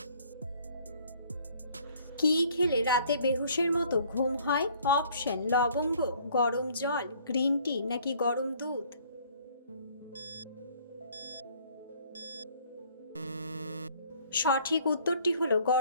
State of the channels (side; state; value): both; inverted; correlation -0.58